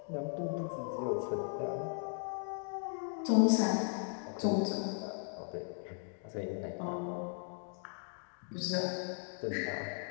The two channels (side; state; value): right; silent; 53 dB below the other